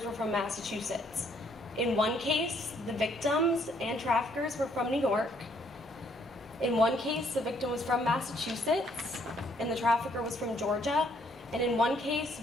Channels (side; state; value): both; normal; correlation 0.67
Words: were from Massachusetts. In 1 case, the victims and traffickers were from New York. In 1 case, the victim was from Massachusetts and the trafficker was from Georgia. And in 1 case,